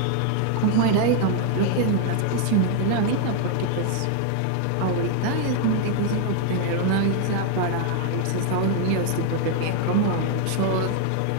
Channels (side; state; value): both; different; correlation 0.00